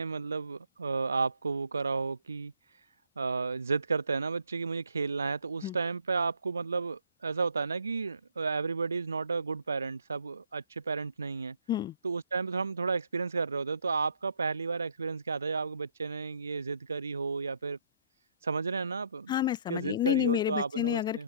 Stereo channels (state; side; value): inverted; both; correlation -0.66